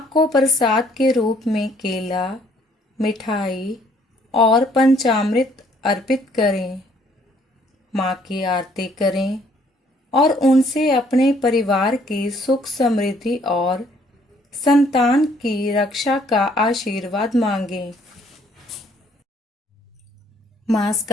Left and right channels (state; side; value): normal; both; correlation 0.63